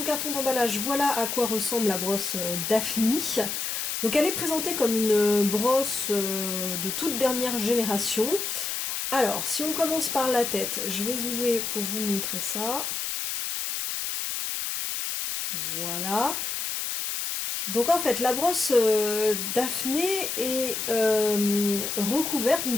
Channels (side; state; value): left; noise; hiss, 2 dB below the sound